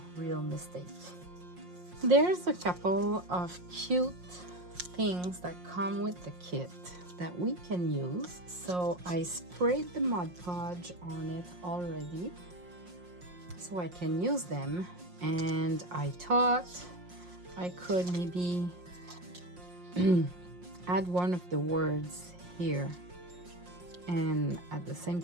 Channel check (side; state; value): left; late; 5.6 ms